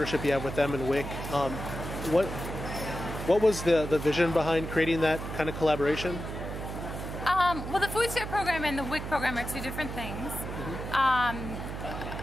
you have with them and WIC, what was the vision behind creating that kind of collaboration? Well, the food share program and the WIC program are two different things.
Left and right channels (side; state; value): right; noise; hum, 7 dB below the sound